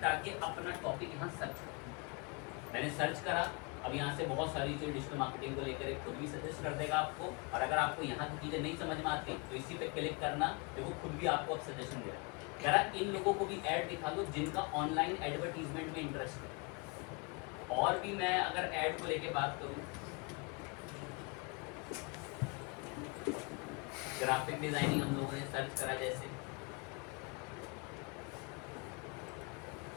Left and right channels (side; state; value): right; quieter; 30.0 dB